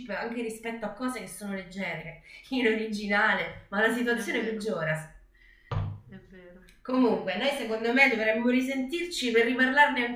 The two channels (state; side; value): identical; both; correlation 1.00